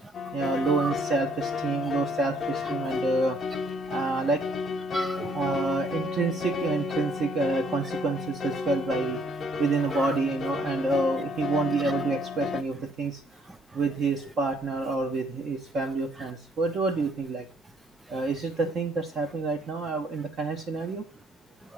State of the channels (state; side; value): normal; both; correlation 0.65